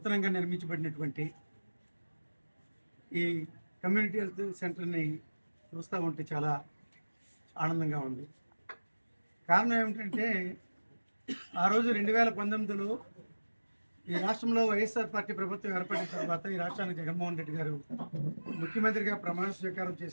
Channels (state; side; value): inverted; both; correlation -1.00